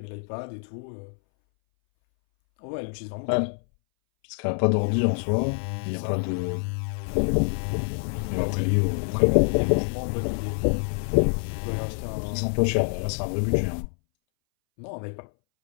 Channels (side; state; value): right; silent; 61 dB below the other